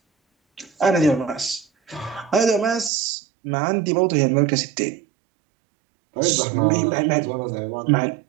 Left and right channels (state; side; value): drops out; left; at 2.9 s